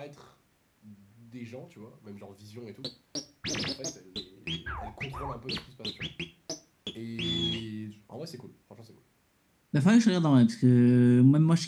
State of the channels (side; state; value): both; identical; correlation 1.00